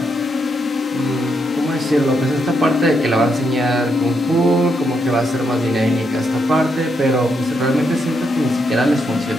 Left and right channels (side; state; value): both; normal; correlation 0.80